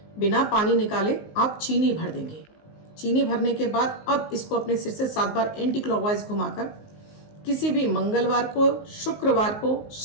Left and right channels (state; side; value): late; right; 19 ms